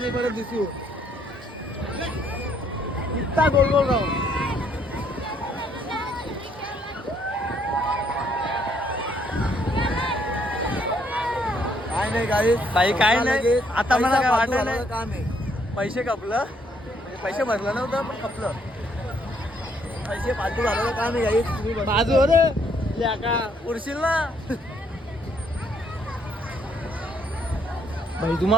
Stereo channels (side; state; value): both; normal; correlation 0.69